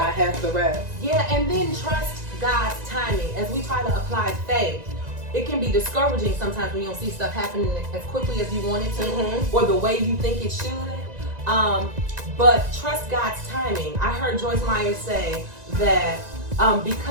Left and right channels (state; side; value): late; left; 1.9 ms